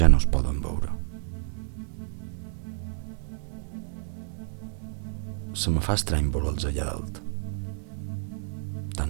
no es poden veure. Se me fa estrany veure'ls allà dalt,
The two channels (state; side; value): silent; left; 56 dB below the other